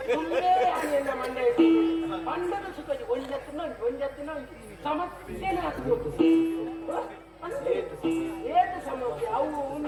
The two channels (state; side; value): identical; both; correlation 1.00